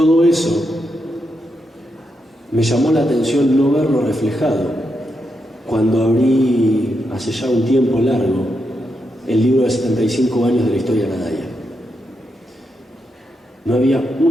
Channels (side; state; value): both; normal; correlation 0.84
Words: eso me llamó la atención no verlo reflejado cuando abrí hace ya un tiempo largo el libro de 75 años de la historia de la Daya. No había